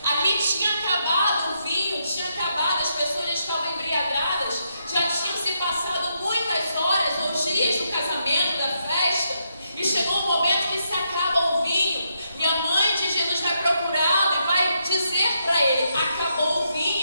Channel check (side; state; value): both; inverted; correlation -0.80